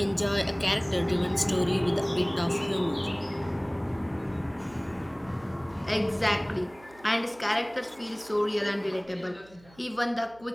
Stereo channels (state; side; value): noise; right; hum, 26 dB below the sound